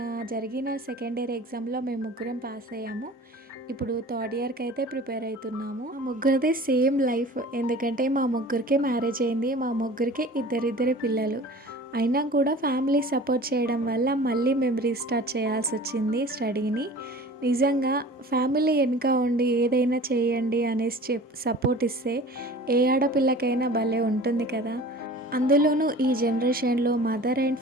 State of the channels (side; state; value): both; normal; correlation 0.42